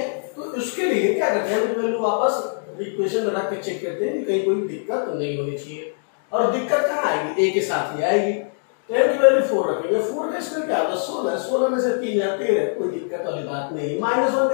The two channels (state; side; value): silent; right; digital silence